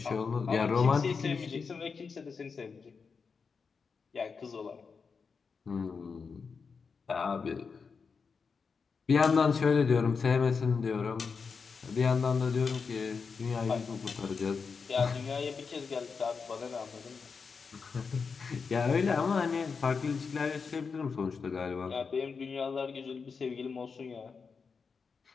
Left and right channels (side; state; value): right; quieter; 5.3 dB